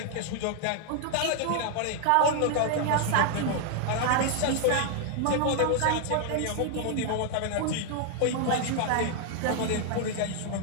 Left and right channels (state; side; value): different; both; correlation 0.00